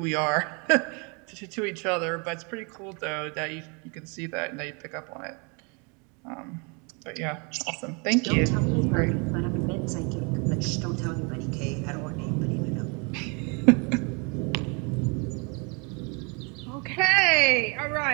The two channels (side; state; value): left; quieter; 33.0 dB